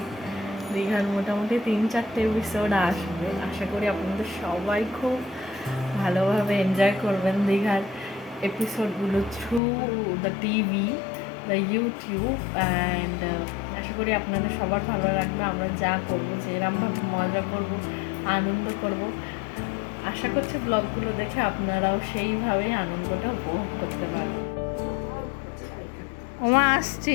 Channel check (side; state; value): right; drops out; at 9.6 s